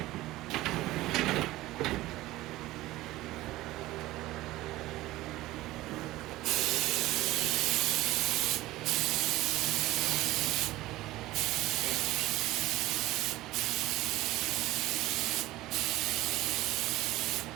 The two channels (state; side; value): quieter; left; 17.3 dB